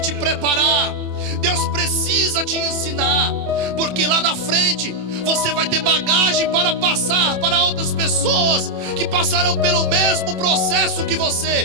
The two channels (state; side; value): late; left; 27 ms